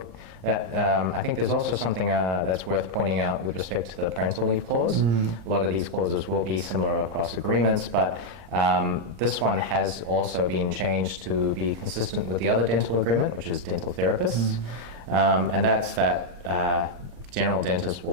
I think there's also something that's worth pointing out with respect to the parental leave clause. A lot of these clauses will be similar across agreements, but this one has also been changed to be consistent with the other dental agreement, which is dental therapists. and that's that general dentists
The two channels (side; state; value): left; late; 34 ms